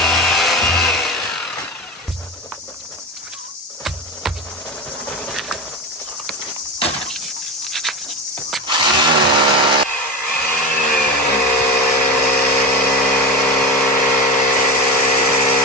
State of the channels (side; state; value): both; normal; correlation 0.22